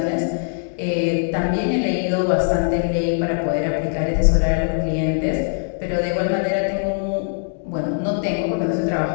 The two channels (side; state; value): right; silent; digital silence